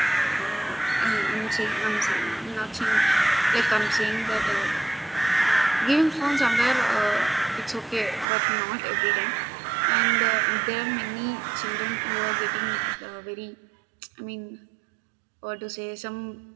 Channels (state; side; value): drops out; left; at 8.2 s